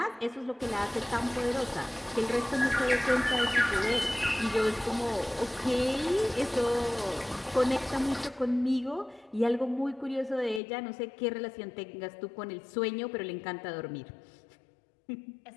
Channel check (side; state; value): right; drops out; at 10.6 s